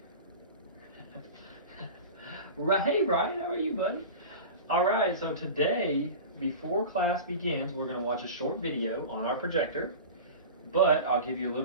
Hey, Ryan, how are you, buddy? All right, so today, before class begins, we're going to watch a short video on our projector, but I'll give you a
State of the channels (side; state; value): both; inverted; correlation -0.33